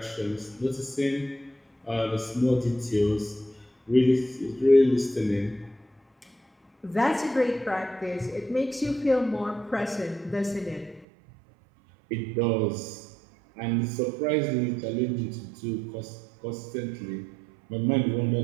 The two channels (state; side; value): drops out; left; at 11.1 s